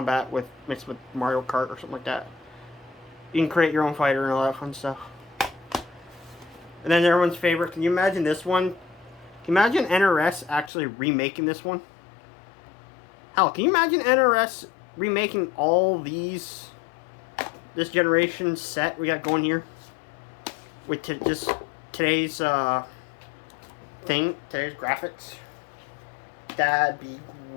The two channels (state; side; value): drops out; right; at 10.7 s